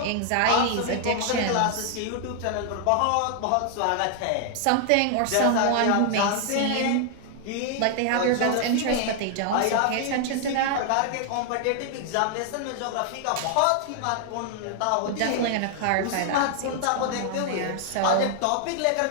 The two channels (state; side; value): different; both; correlation 0.00